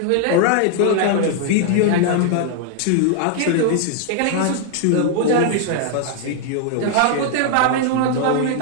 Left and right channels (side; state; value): both; different; correlation 0.00